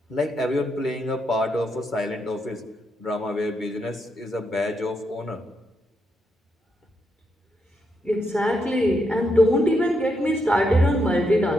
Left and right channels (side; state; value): both; normal; correlation 0.81